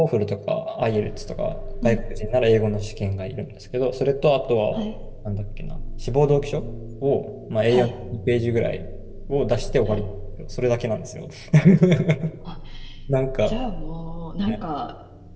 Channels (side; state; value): both; identical; correlation 1.00